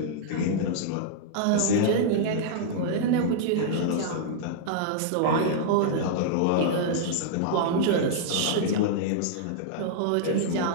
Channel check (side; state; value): both; different; correlation -0.01